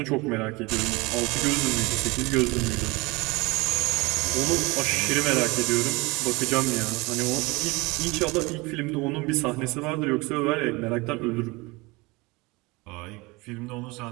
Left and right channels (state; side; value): quieter; left; 24.3 dB